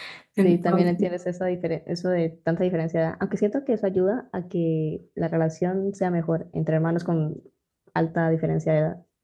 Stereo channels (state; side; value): identical; both; correlation 1.00